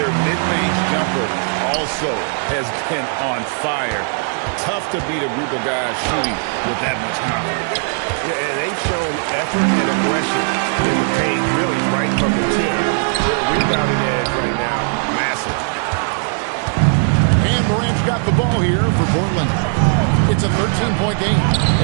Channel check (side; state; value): left; silent; 59 dB below the other